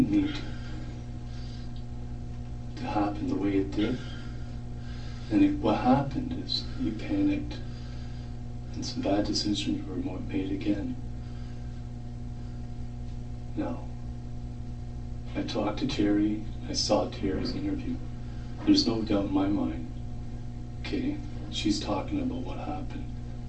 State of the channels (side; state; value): both; identical; correlation 1.00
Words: need to happen the way it did, and what happened is you panicked, and some bad decisions were made again. Now, I talked to Terry, I saw Terry's interview. There's no doubt in my mind, okay, she's talking about what happened.